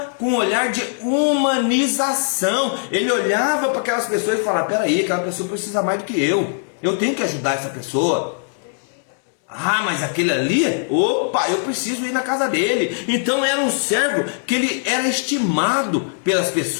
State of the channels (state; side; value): silent; right; 66 dB below the other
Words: com um olhar de humanização. Ele olhava para aquelas pessoas e falava: peraí, aquela pessoa precisa mais do que eu. Eu tenho que ajudar essa pessoa. Ah, mas aquele ali, opa, eu preciso ir na casa dele. Então era um servo que ele era estimado pelas